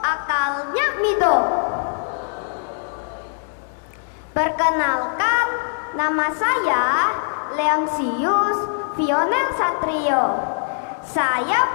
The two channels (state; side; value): silent; right; digital silence